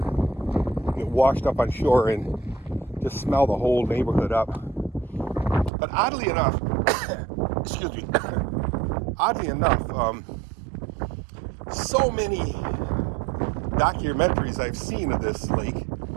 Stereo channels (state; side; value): drops out; left; at 5.7 s